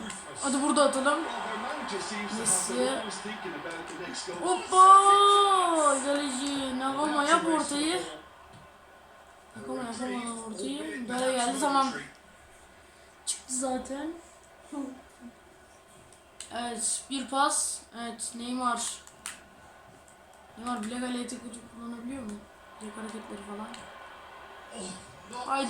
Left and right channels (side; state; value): both; identical; correlation 1.00